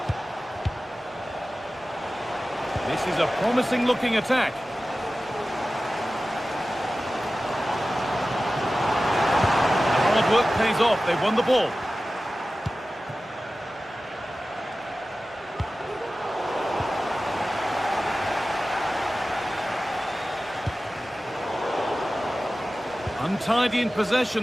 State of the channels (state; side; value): normal; both; correlation 0.95